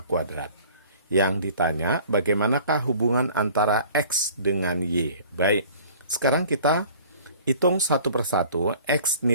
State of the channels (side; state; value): both; inverted; correlation -0.49